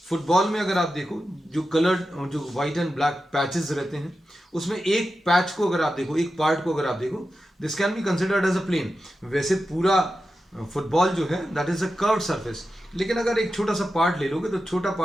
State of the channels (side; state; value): both; normal; correlation 0.91